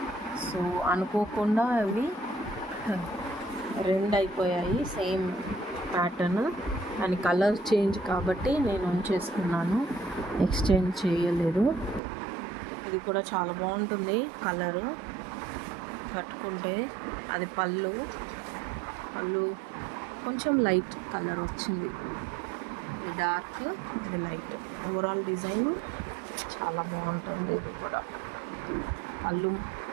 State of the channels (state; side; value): drops out; left; at 12.0 s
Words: సో అనుకోకుండా అవి 2 అయిపోయాయి సేమ్ ప్యాటర్న్, కానీ కలర్ చేంజ్ కాబట్టి నేను ఉంచేసుకున్నాను, ఎక్స్చేంజ్ చేయలేదు. ఇది కూడా చాలా బాగుంటుంది కలరు. కట్టుకుంటే అది పళ్ళు కొంచెం లైట్ కలర్ వచ్చింది, ఇది డార్క్, ఇది లైట్. ఓవరాల్ డిజైన్ చాలా బాగుంటుంది. ఇది కూడా పళ్ళు